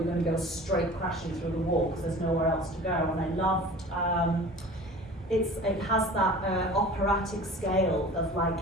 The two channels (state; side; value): normal; both; correlation 0.41